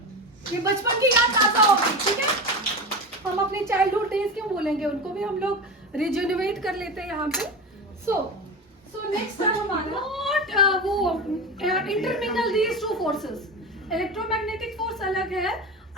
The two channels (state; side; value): normal; both; correlation 0.24